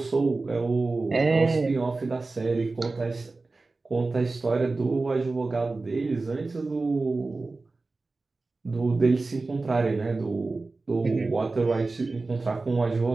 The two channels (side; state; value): left; quieter; 3.6 dB